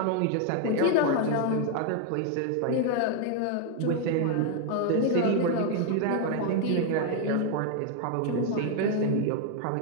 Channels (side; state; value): both; different; correlation 0.01